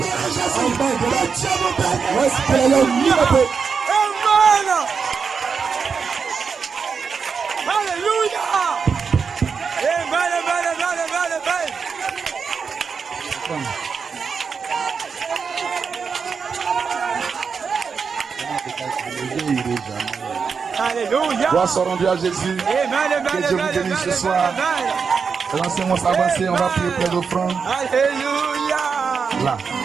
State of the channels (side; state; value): left; quieter; 5.7 dB